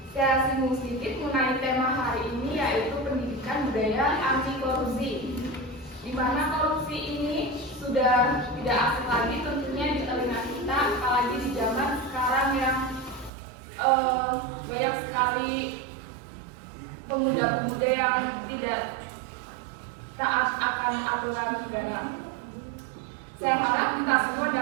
Saya singgung sedikit mengenai tema hari ini yaitu pendidikan budaya anti korupsi, di mana korupsi ini sudah tidak asing lagi tentunya di telinga kita, apalagi di zaman sekarang yang banyak sekali pemuda-pemuda yang tidak taat akan aturan negara. Saya harap kita semua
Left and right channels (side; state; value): left; drops out; at 13.3 s